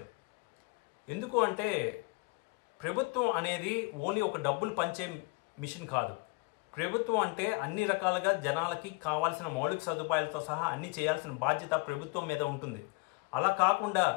ఎందుకు అంటే ప్రభుత్వం అనేది ఓన్లీ ఒక డబ్బులు పంచే మిషన్ కాదు. ప్రభుత్వం అంటే అన్ని రకాలుగా జనాలకి కావాల్సిన మౌలిక సదుపాయాలతో సహా అన్ని చేయాల్సిన బాధ్యత ప్రభుత్వం మీద ఉంటుంది. అలా కాకుండా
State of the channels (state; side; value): quieter; right; 27.2 dB